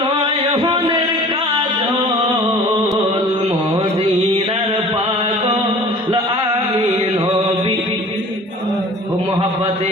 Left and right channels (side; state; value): both; normal; correlation 0.45